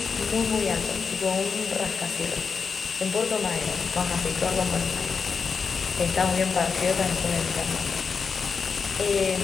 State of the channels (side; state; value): right; quieter; 5.5 dB